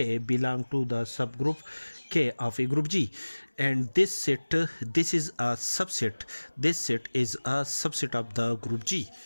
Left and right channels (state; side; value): inverted; both; correlation -1.00